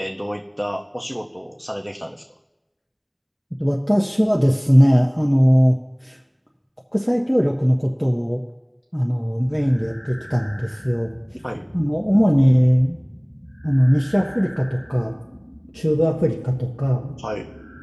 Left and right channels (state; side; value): identical; both; correlation 1.00